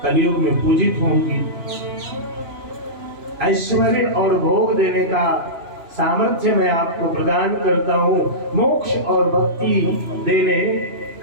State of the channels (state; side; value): late; left; 2.9 ms